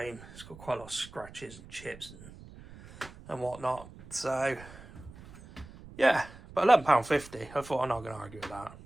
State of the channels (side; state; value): right; noise; rumble, 18 dB below the sound